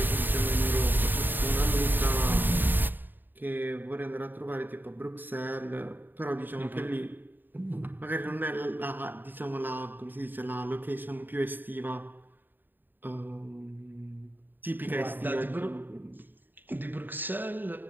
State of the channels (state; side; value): late; left; 0.091 ms